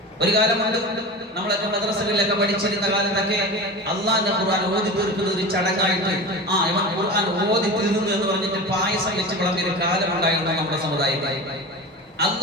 ഒരു കാലമുണ്ട് നമ്മളൊക്കെ മദ്രസകളിലൊക്കെ പഠിച്ചിരുന്ന കാലത്തൊക്കെ അള്ളാഹിന്റെ ഖുർആൻ ഓതി തീർക്കുന്ന ഒരു ചടങ്ങായിട്ട് ഇവൻ ഖുർആൻ ഓതി തീർന്നു എന്ന് പറഞ്ഞിട്ട് പായസം വെച്ച് വിളമ്പിയ ഒരു കാലമുണ്ടായിരുന്നു നമ്മുടെ സമുദായത്തിൽ.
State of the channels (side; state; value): both; normal; correlation 0.30